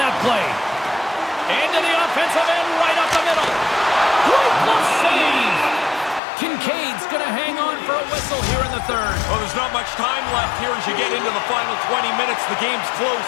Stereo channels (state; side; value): drops out; right; at 6.2 s